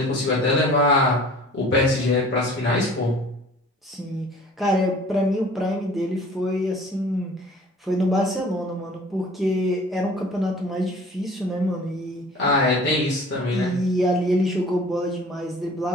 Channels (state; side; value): normal; both; correlation 0.47